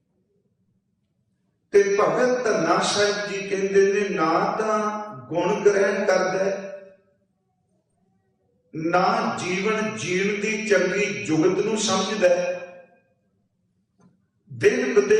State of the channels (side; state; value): both; identical; correlation 1.00